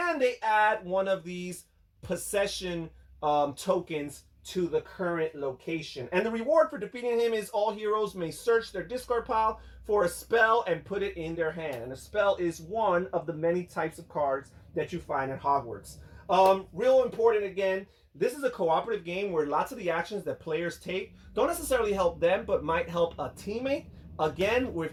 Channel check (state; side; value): identical; both; correlation 1.00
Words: they add one of these possession tokens to the current location. And the reward for defeating him is all heroes may search their discard pile for a spell and put it in their hand. And a spell is one of the many types of cards that you find at Hogwarts. Real important again, this is a cooperative game where lots of the actions that players take don't necessarily help them, but might help a teammate. Again,